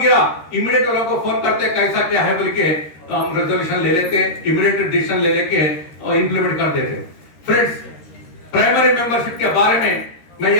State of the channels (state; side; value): late; right; 13 ms